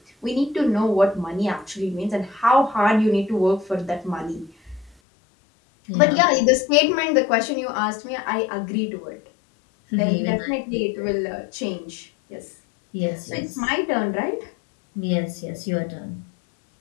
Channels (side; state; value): right; drops out; at 5.0 s